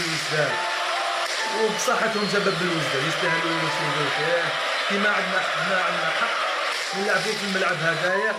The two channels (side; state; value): both; identical; correlation 1.00